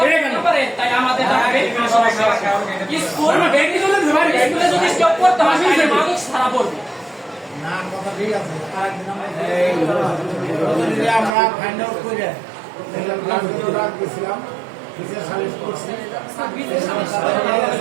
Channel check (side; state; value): left; drops out; at 11.3 s